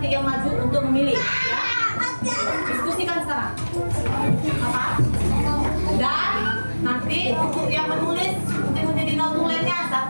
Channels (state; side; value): inverted; both; correlation -1.00